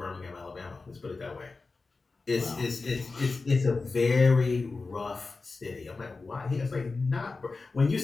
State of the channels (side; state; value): right; quieter; 3.9 dB